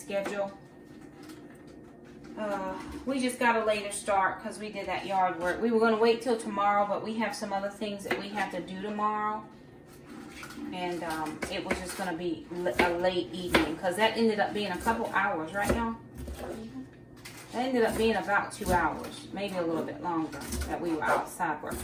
We just got a later start because we did that yard work. We were going to wait till tomorrow, but we have some other things that we have to do tomorrow. And it was just going to be a late evening because that ended up being a couple hours, right, y'all? That ended up being about 2 hours, maybe a little bit longer, that we were outside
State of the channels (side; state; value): both; identical; correlation 1.00